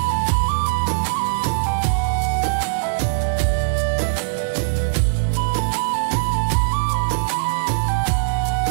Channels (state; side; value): silent; left; 64 dB below the other